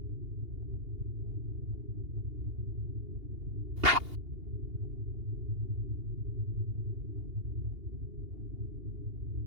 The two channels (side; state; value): left; late; 2.8 ms